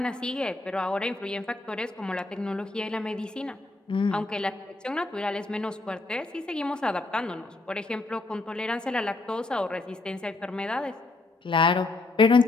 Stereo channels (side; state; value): right; quieter; 3.2 dB